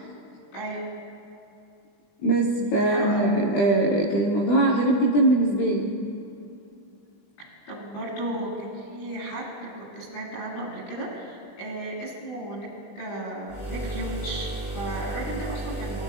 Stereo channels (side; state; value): right; late; 20 ms